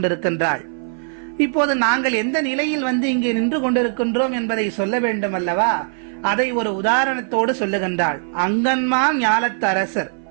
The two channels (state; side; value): silent; left; 56 dB below the other